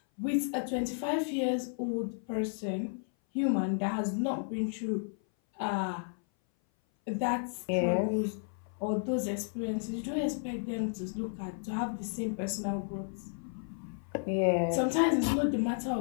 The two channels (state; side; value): silent; right; 56 dB below the other